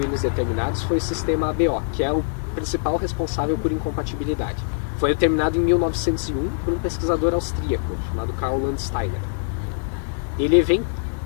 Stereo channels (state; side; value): silent; right; 59 dB below the other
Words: determinados foi o sistema ABO, que é o principal responsável por incompatibilidade. Foi determinado em 1901 por um pesquisador austríaco chamado Karl Landsteiner.